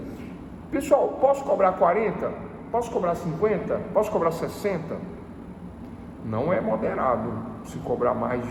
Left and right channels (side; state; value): both; identical; correlation 1.00